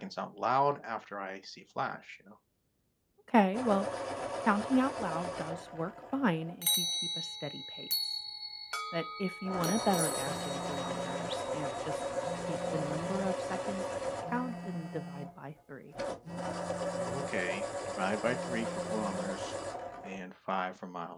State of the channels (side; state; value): both; identical; correlation 1.00